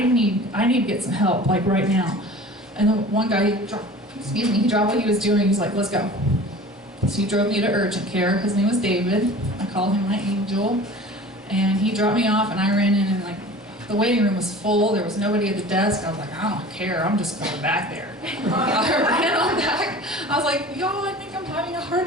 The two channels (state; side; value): normal; both; correlation 0.41